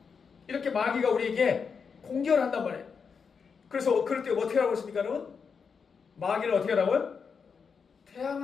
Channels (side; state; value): right; quieter; 5.9 dB